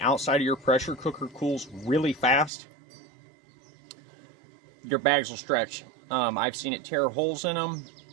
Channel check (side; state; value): left; drops out; at 2.5 s